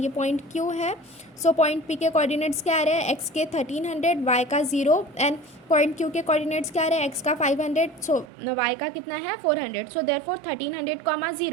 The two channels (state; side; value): drops out; left; at 8.2 s